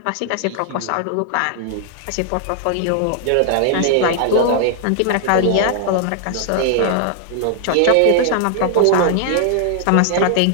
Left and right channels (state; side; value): different; both; correlation 0.00